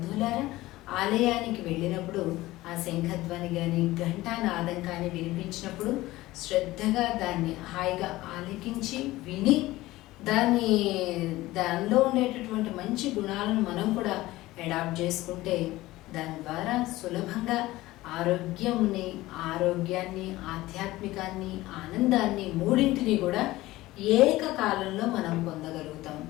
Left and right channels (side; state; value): right; quieter; 17.8 dB